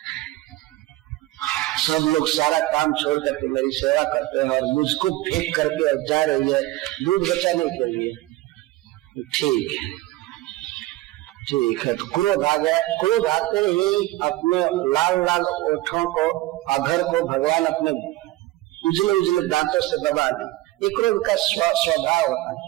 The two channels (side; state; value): left; quieter; 17.7 dB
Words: सब लोग सारा काम छोड़ करके मेरी सेवा करते हैं और मुझको फेंक करके जा रही है दूध बचाने के लिए। ठीक है, तो क्रोध आ गया। क्रोध आते ही अपने लाल लाल ओठों को, अधर को भगवान अपने उजले उजले दांतों से दबा दी। ये क्रोध का स्वभाव होता है,